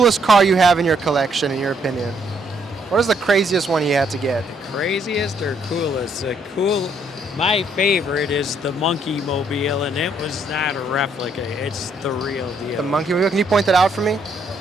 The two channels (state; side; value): normal; both; correlation 0.70